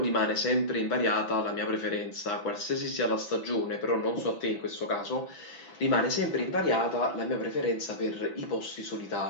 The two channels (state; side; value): late; right; 6.1 ms